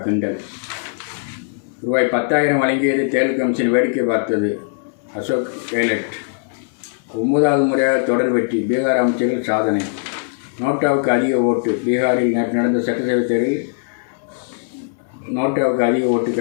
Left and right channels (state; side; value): silent; right; 61 dB below the other